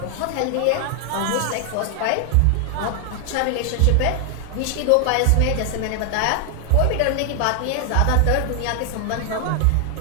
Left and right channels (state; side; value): different; both; correlation 0.00